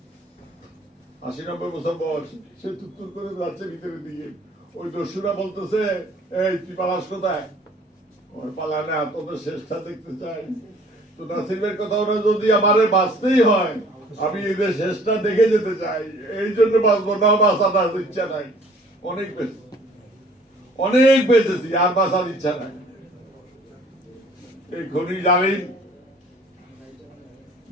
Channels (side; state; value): both; normal; correlation 0.54